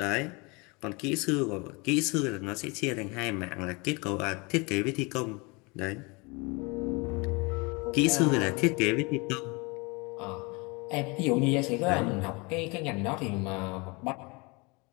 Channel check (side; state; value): right; quieter; 28.0 dB